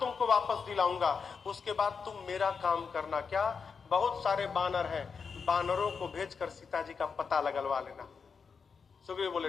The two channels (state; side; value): quieter; right; 5.7 dB